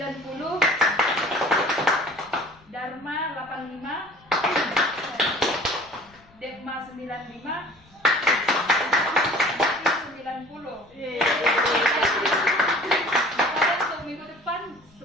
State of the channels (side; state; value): left; noise; rumble, 29 dB below the sound